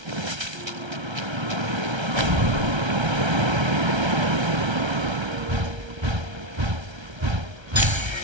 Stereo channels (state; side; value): late; left; 1.3 ms